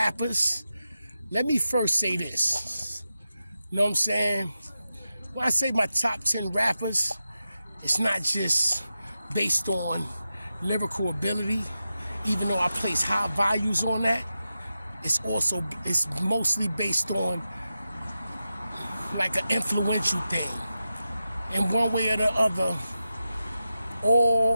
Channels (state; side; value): inverted; both; correlation -0.91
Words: let me first say this. You know what I'm saying? When I say my top 10 rappers, it's not just based on lyrical ability, even though I place high values on that. It's mostly based on like an influential thing. In one way or the other,